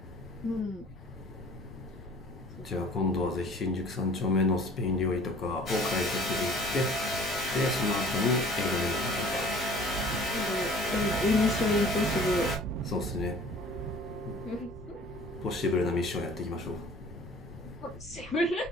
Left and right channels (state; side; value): normal; both; correlation 0.49